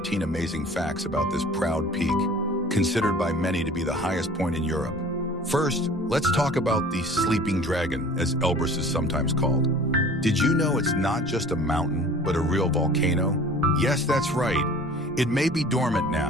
amazing facts about this proud peak, considered by many to be the highest point in Europe. First, let's talk about the sleeping dragon, as Elbrus is sometimes called. Did you know it's not just a mountain, but a real volcano? Yes, that's right. It may be dormant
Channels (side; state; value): both; normal; correlation 0.46